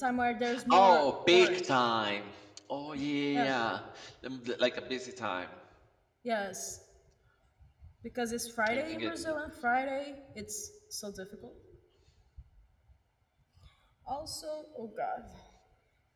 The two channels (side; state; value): both; identical; correlation 1.00